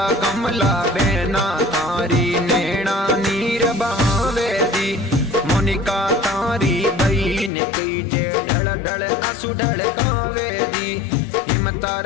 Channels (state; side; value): drops out; right; at 7.5 s